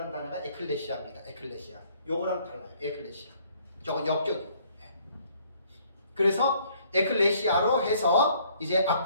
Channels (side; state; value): both; inverted; correlation -0.63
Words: 단어가 에클레시아입니다. 에클레시아. 요거랑 달라요. 에클레시아. 저건 역격이에요. 그래서 에클레시아로 해서 이제